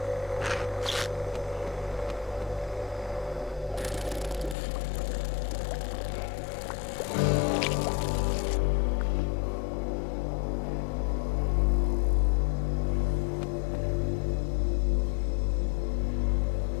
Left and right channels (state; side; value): drops out; right; at 4.5 s